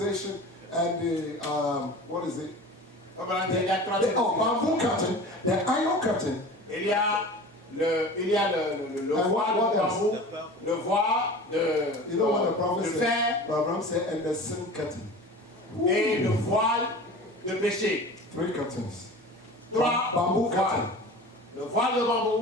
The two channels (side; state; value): both; normal; correlation 0.37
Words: and the, what is it? Il y a trois Bamboo curtain, the iron curtain, Il y a le And voile what de else? bambou, le voile you know what the de prophet fer said? Brother Abraham said, and the sin curtain. et le voile de péché. 3 curtains. Trois Bamboo voiles. curtain Le voile de